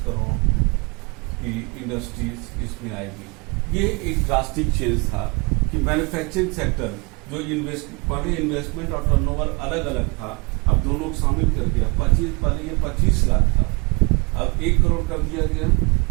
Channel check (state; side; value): quieter; left; 29.9 dB